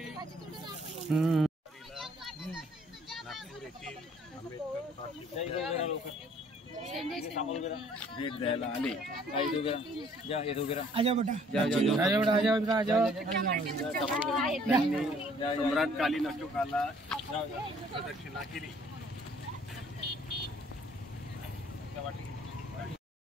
नागपूर येथील आंबेडकर भेट द्यायला आले. आजा बेटा, सम्राट कालीन अशोकाला प्रदक्षिणा केली.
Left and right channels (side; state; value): both; normal; correlation 0.59